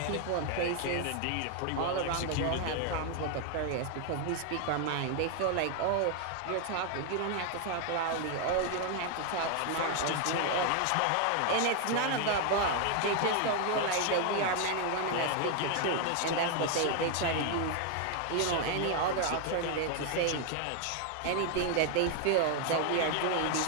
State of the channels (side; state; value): both; different; correlation 0.00